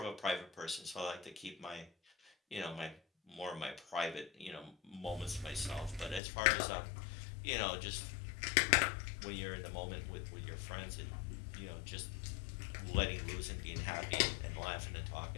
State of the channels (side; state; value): right; drops out; at 6.2 s